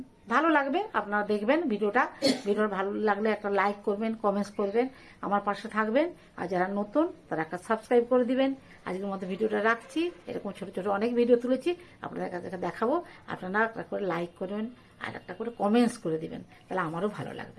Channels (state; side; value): identical; both; correlation 1.00